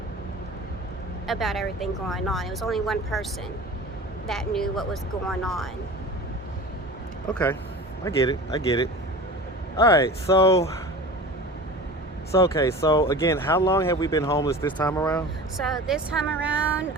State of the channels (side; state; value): both; normal; correlation 0.36